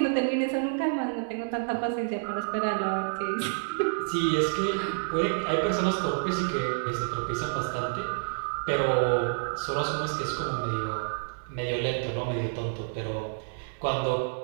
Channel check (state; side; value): silent; left; 59 dB below the other